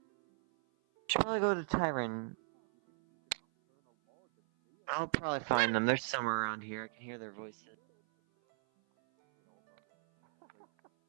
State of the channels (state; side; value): silent; left; 54 dB below the other